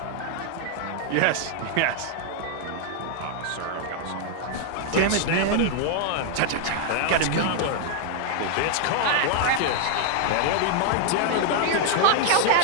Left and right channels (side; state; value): both; different; correlation 0.00